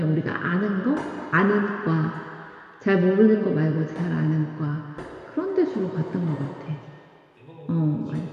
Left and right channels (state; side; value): identical; both; correlation 1.00